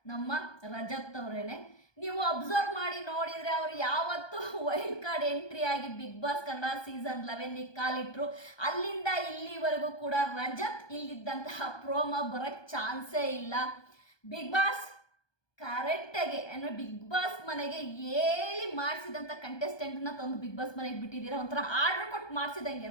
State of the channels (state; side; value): late; right; 1.2 ms